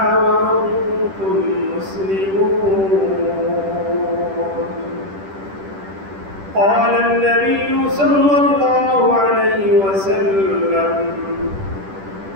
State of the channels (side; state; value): left; late; 10 ms